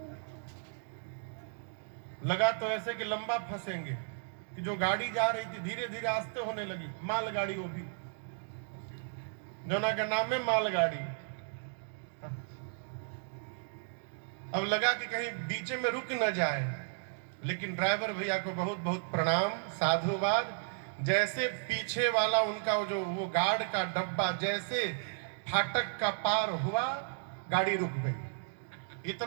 लगा तो ऐसे कि लंबा फंसेंगे कि जो गाड़ी जा रही थी धीरे धीरे आस्ते होने लगी, मालगाड़ी, वो भी जोना का नाम है मालगाड़ी। अब लगा कि कहीं बीच में रुक न जाए, लेकिन ड्राइवर भैया को बहुत बहुत प्रणाम, साधुवाद। जैसे पीछे वाला उनका जो वो गार्ड का डब्बा जैसे फाटक का पार हुआ, गाड़ी रुक गई।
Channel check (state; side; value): silent; left; digital silence